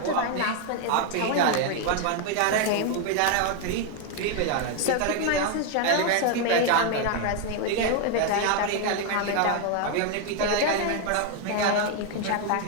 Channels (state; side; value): different; both; correlation 0.01